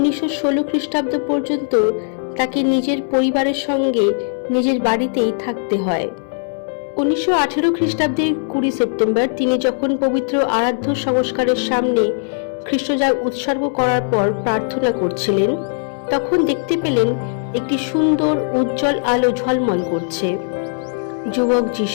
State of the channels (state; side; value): silent; right; digital silence